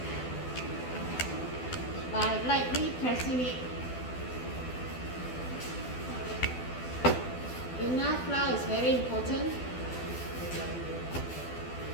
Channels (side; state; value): right; late; 12 ms